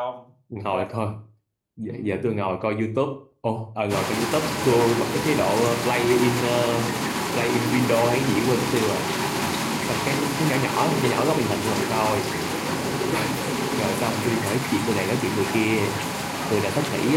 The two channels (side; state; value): both; identical; correlation 1.00